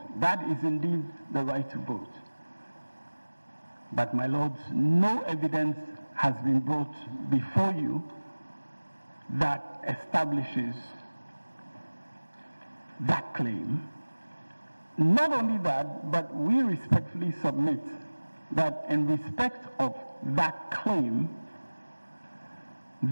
That is indeed the right to vote. But my lords, no evidence has been brought before you that establishes that claim. Not only that, but we respectfully submit that in respect of that claim,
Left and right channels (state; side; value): inverted; both; correlation -1.00